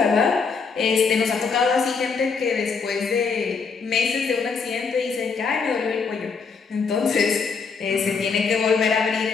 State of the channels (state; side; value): quieter; right; 5.2 dB